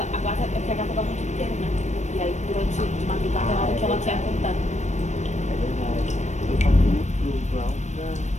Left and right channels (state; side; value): late; right; 0.34 ms